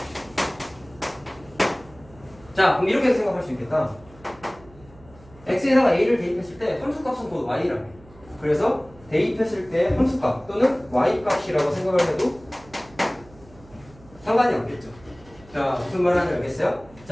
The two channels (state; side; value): noise; right; hum, 24 dB below the sound